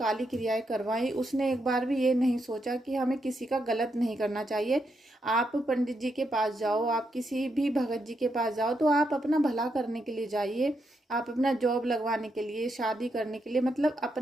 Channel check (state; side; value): normal; both; correlation 0.81